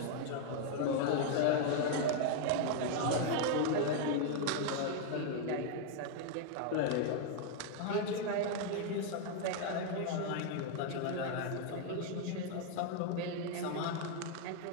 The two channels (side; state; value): both; different; correlation 0.00